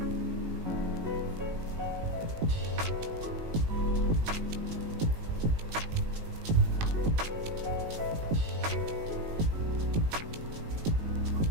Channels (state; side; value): late; left; 19 ms